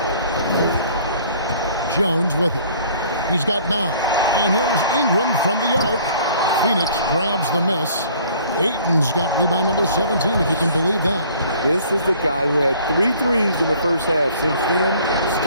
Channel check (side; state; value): both; inverted; correlation -0.54